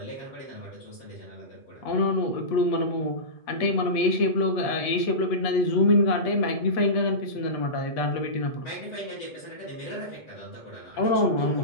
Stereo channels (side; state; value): right; late; 8.3 ms